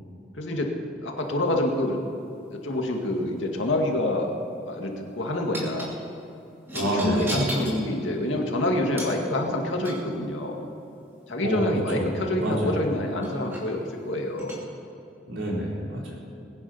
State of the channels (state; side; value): normal; both; correlation 0.41